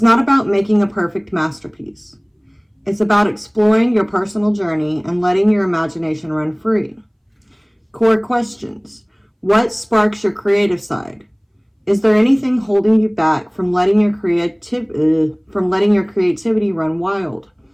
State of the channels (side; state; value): both; identical; correlation 1.00